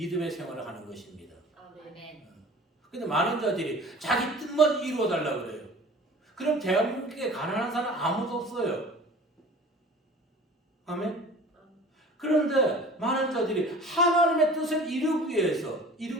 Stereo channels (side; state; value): both; normal; correlation 0.43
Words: 생활을 하는 것입니다. 아멘. 근데 많은 자들이 자기 뜻만 이루어달라고 그래요. 그럼 대한민국에 가난한 사람 아무도 없어요. 아멘? 그런데 많은 자들이 하나님의 뜻을 이루기